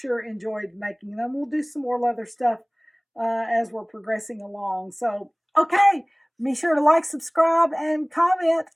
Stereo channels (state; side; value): identical; both; correlation 1.00